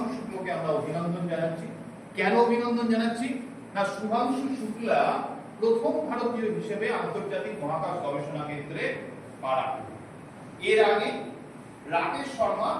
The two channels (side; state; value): both; identical; correlation 1.00